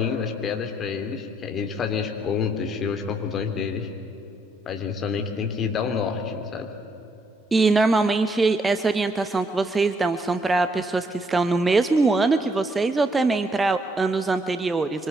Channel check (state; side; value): normal; both; correlation 0.73